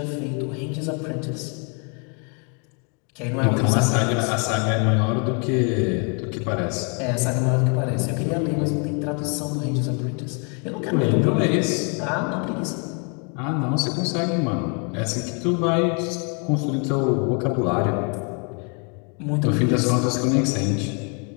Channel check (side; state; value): right; quieter; 37.0 dB